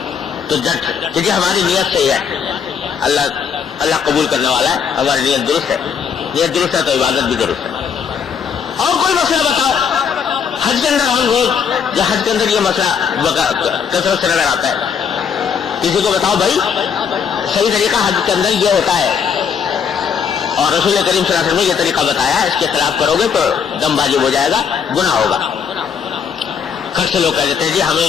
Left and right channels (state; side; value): quieter; right; 6.9 dB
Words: تو جٹ کیونکہ ہماری نیت صحیح ہے، اللہ قبول کرنے والا ہے، ہماری نیت درست ہے، نیت درست ہے تو عبادت بھی درست ہے۔ اور کوئی مسئلہ بتاؤ، حج کے اندر ہم روز یا حج کے اندر یہ مسئلہ کثرت سے نظر آتا ہے، کسی کو بتاؤ بھائی صحیح طریقہ حج کے اندر یہ ہوتا ہے اور رسول کریم صلی اللہ علیہ وسلم نے یہ طریقہ بتایا ہے، اس کے خلاف کرو گے تو دم واجب ہو جائے گا، گناہ ہوگا۔ خر سے لوگ کہہ دیتے ہیں جی ہمیں